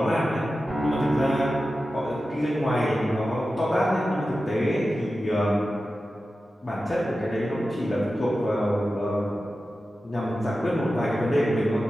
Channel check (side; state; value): both; normal; correlation 0.93